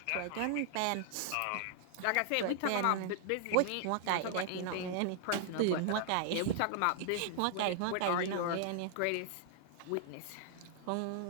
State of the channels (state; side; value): different; both; correlation -0.01